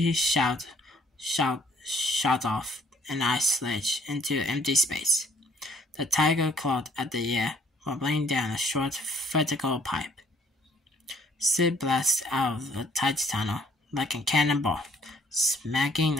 shot off an ice ledge into empty space. The tiger clawed at the air, wobbling down a short vertical pipe. Sid blasted out of the tight tunnel like a cannonball, smacking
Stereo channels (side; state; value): both; normal; correlation 0.63